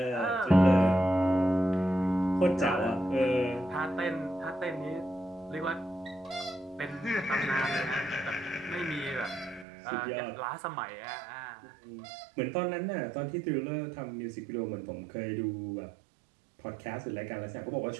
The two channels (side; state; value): left; drops out; at 9.7 s